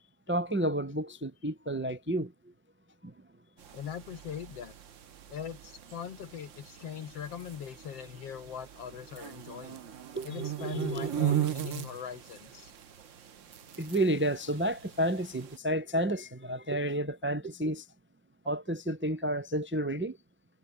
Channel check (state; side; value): late; right; 5.7 ms